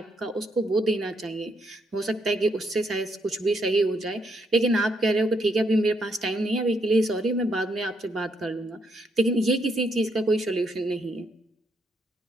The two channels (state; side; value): normal; both; correlation 0.75